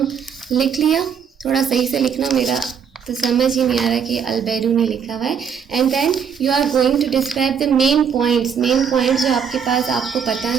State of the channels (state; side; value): quieter; left; 7.1 dB